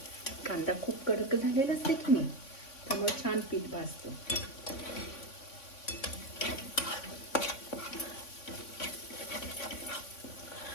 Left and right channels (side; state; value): right; late; 3.5 ms